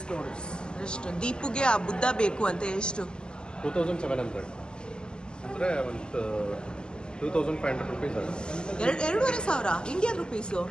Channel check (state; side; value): late; right; 0.047 ms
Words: dollars. ಎಷ್ಟು ದೀಪುಗೆ ಆ ಬುದ್ಧ ಬೇಕು ಅಂತ? ಎಷ್ಟು? 2,700 ಅಂದರೆ ಒಂದು 2,500 rupees ಆಗುತ್ತೆ. 2,500 ಇಂಡಿಯನ್ ರುಪೀಸು.